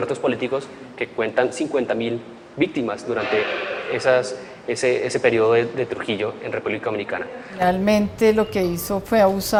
políticos, que cuentan 50.000 víctimas durante ese periodo de Trujillo en República Dominicana. Realmente lo que hizo fue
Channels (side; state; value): both; identical; correlation 1.00